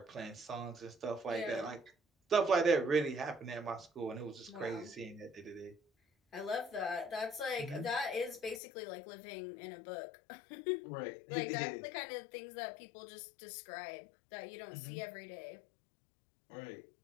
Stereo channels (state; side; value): drops out; right; at 8.6 s